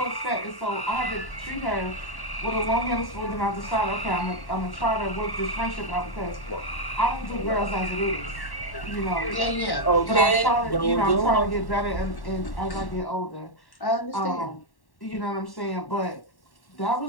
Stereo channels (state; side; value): late; right; 1.1 ms